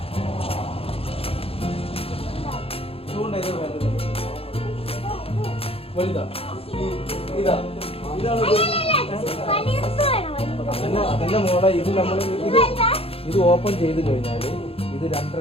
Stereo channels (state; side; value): late; right; 0.28 ms